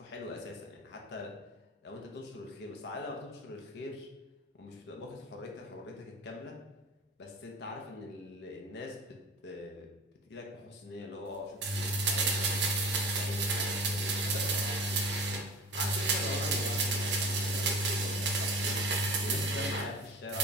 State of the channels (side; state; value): both; normal; correlation 0.39